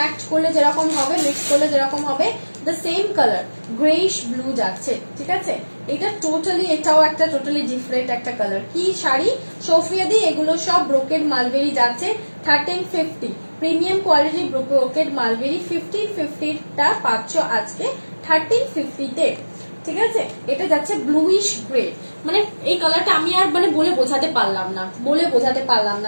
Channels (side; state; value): both; inverted; correlation -1.00